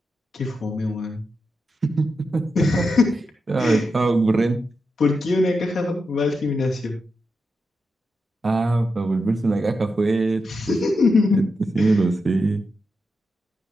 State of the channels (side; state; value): both; normal; correlation 0.87